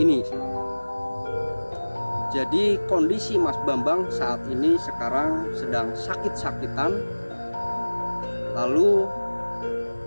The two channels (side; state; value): both; inverted; correlation -1.00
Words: Jadi kondisi Mas Bambang saat ini sekarang sedang sakit-sakitan, lalu